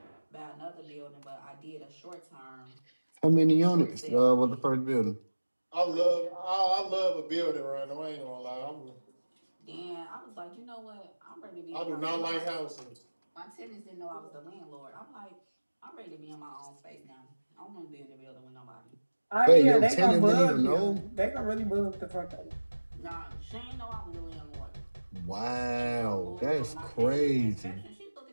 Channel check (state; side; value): inverted; both; correlation -1.00